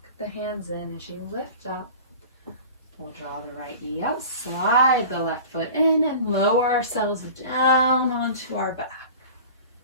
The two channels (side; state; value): both; inverted; correlation -0.39